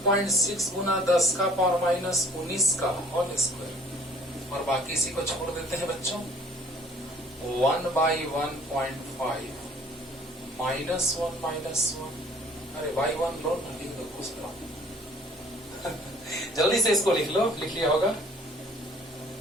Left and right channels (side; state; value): both; normal; correlation 0.54